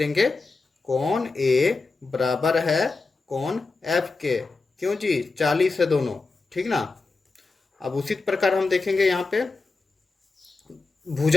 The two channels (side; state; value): right; quieter; 3.8 dB